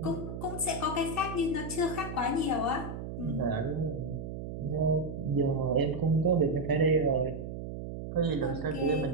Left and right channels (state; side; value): noise; right; hum, 7 dB below the sound